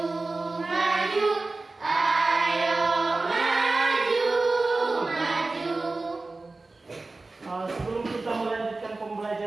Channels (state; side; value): quieter; left; 3.4 dB